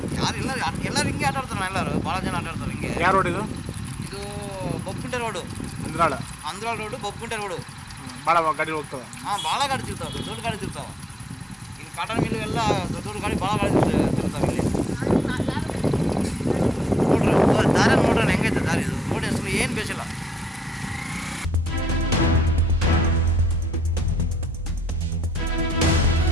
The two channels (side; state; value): both; normal; correlation 0.76